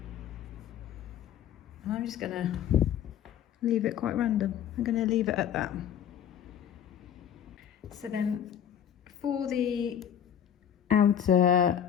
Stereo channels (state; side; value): quieter; right; 9.4 dB